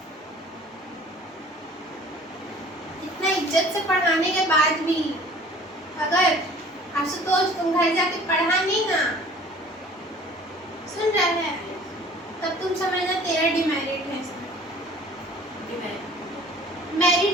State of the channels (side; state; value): both; normal; correlation 0.49